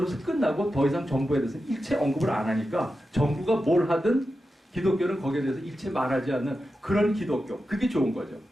끝나고 더 이상 정부에 대해서 일체 언급을 안 하니까 정부가 뭘 하든 기독교는 거기에 대해서 일체 말하지 않는 그런 기독교. 그게 좋은 거죠.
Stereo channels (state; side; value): normal; both; correlation 0.90